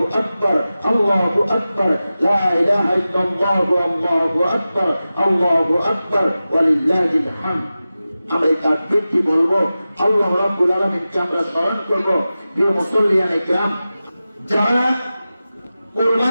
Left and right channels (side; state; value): both; inverted; correlation -0.95